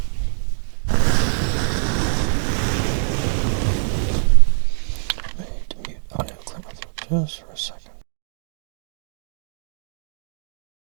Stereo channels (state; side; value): silent; left; digital silence